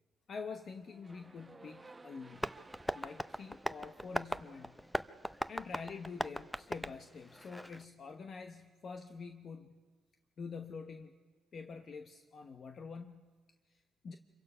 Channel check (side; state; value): both; normal; correlation 0.94